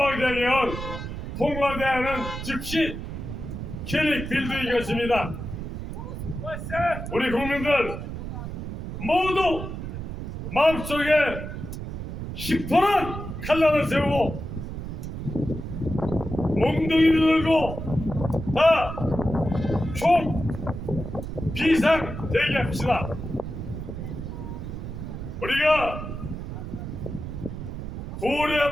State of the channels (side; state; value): right; noise; rumble, 7 dB below the sound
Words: 개헌 통과되는 즉시 클릭 빌드인 것입니다. 우리 국민들 모두 마음속에 시퍼런 칼날을 세우고 몽둥이를 들고 다 총 비상 대기합시다. 우리가